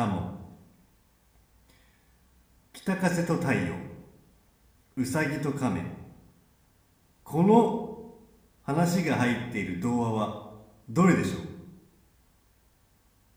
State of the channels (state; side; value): identical; both; correlation 1.00